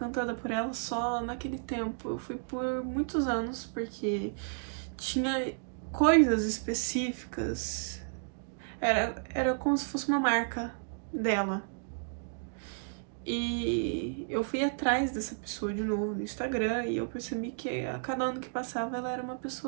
por ela só naquele tempo. Eu fui por muitos anos, porque tinha coisas específicas. Era como se fosse uma marca dela. E eu fui atrás dessa pessoa de novo no Instagram e eu percebi que a cada ano que passava ela era uma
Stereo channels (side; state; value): left; silent; digital silence